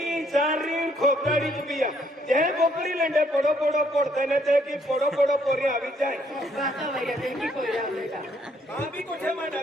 सारी खोकड़ी पिया जे बोकडी लेंडे पड़ो पड़ो पड़ते ने ते की पड़ो पड़ो पोरी आवी जाए बाता भैया देखी कोई रहा बेटा मां भी कोठे में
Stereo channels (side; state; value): both; normal; correlation 0.68